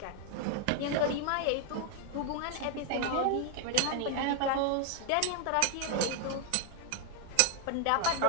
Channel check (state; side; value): different; both; correlation 0.00